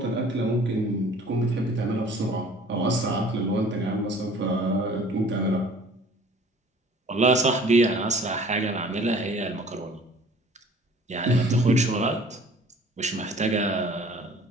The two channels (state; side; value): normal; both; correlation 0.50